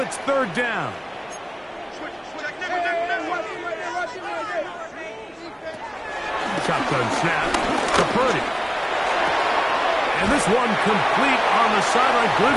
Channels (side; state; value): both; identical; correlation 1.00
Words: 3rd down. Shotgun snap to Purdy. And this one complete on the sideline.